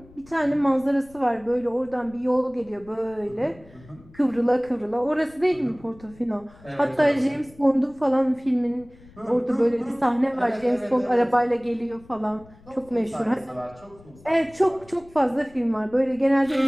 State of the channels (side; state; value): left; noise; rumble, 24 dB below the sound